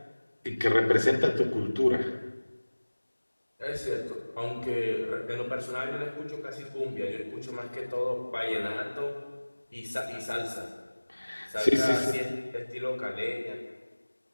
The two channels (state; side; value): inverted; both; correlation -1.00